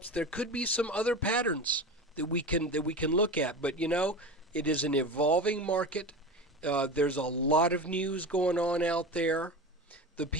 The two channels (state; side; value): normal; both; correlation 0.28